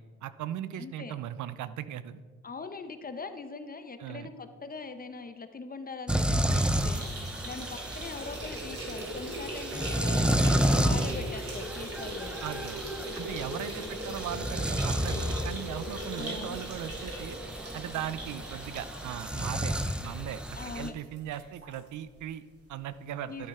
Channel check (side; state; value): both; normal; correlation 0.63